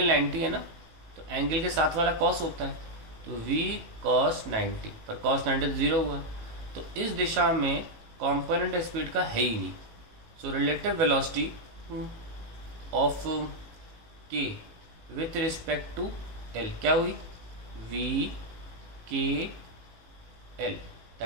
90 है ना, तो एंगल के साथ वाला कॉस होता है, तो v cos 90, पर cos 90 0 हुआ, तो इस दिशा में कंपोनेंट स्पीड का है ही नहीं। So relative velocity of k with respect to l क्या हुई, v k l,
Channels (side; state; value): left; late; 19 ms